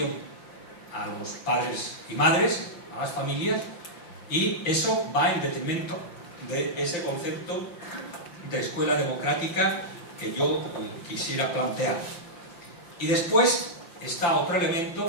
a los padres y madres, a las familias, y eso va en detrimento de ese concepto de escuela democrática que yo quisiera plantear. Y después está otro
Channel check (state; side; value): late; right; 5.8 ms